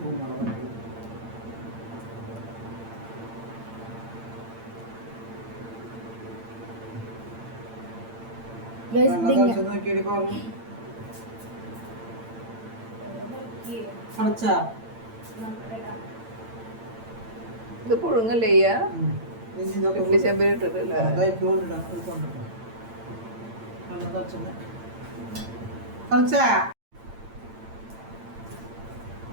ഇത് പുഴുങ്ങല്ലേ ചെമ്പിൽ ഇട്ടിട്ടില്ല.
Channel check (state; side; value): late; left; 8.8 ms